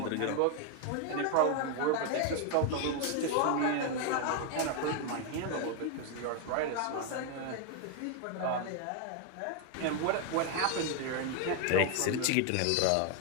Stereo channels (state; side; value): different; both; correlation 0.01